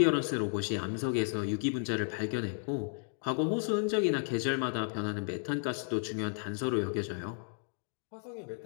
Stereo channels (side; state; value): right; silent; 56 dB below the other